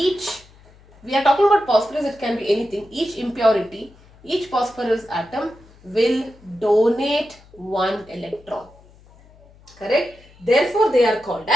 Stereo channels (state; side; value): noise; left; hum, 26 dB below the sound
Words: are talking about phosphorus, it can be anything. Each impurity, each phosphorus atom will donate 1 electron. Correct? Therefore, they are called